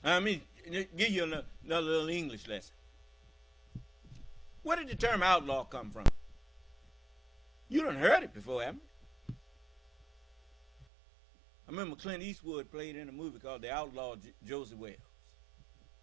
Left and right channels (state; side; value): drops out; left; at 10.9 s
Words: let me give you another little English lesson. Where did the term outlaw come from? You done heard it before, haven't you? I remember Clint Eastwood played in a movie called The Outlaw Josie Wells.